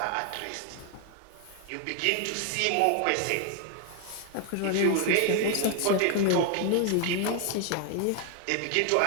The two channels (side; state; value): both; different; correlation 0.00